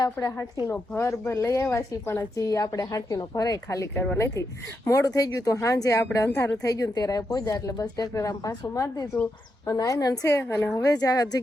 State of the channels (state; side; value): normal; both; correlation 0.84